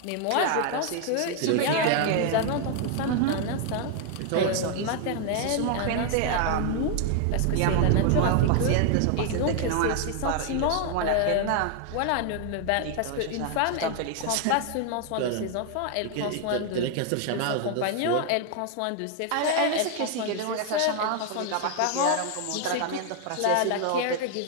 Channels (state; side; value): different; both; correlation 0.00